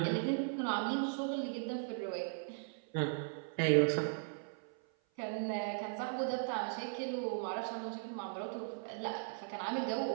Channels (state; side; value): silent; left; 52 dB below the other